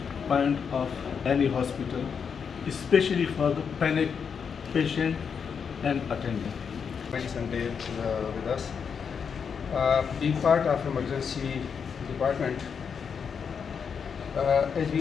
point of any hospital, especially for the panic patient and attendant. Sunday with us. Being part of emergency department, as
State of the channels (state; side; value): quieter; right; 6.6 dB